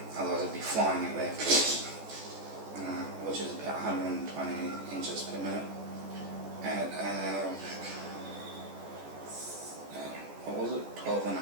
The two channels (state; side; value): late; left; 14 ms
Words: Otherwise I'd be flying it there, which is about 120 inches per minute. At what was it? 12 and a